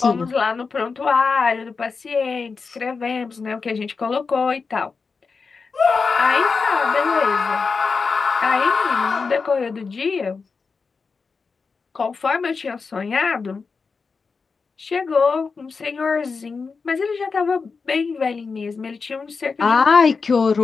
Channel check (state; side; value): quieter; right; 4.8 dB